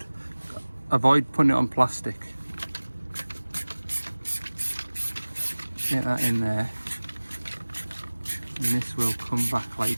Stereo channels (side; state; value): both; inverted; correlation -1.00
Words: Avoid putting it on plastic. Get that in there. And this will come back